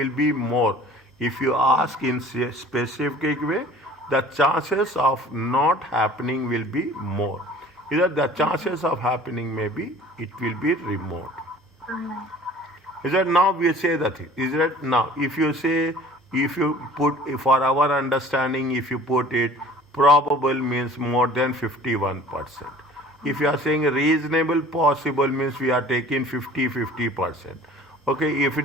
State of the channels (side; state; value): both; normal; correlation 0.47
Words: be more. If you ask in specific way, the chances of not happening will be more. Either the chances of happening may be, it will be remote. Is that now we say that thing? Is that now if you put for our understanding, if you put it probable means more than 51%. If you are saying reasonable possible means we are taking 50%. Okay, if